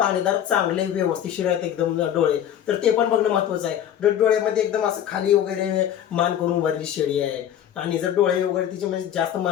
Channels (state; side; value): quieter; right; 10.2 dB